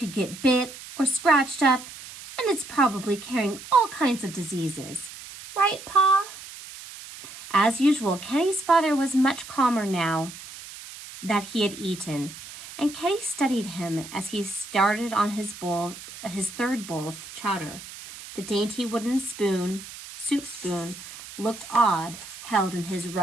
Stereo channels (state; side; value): noise; right; hiss, 14 dB below the sound